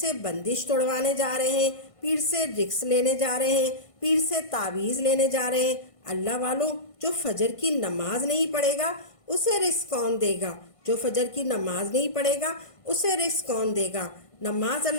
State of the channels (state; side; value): late; right; 1.5 ms